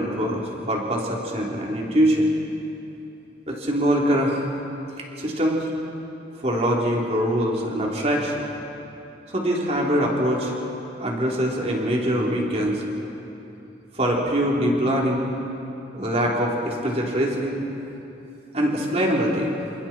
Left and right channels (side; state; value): both; normal; correlation 0.58